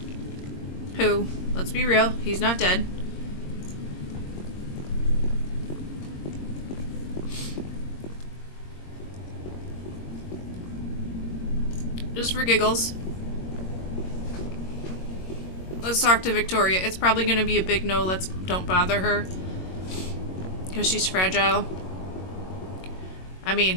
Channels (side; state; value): right; late; 22 ms